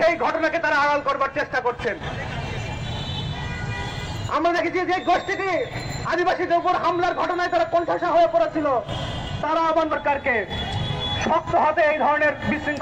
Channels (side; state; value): both; identical; correlation 1.00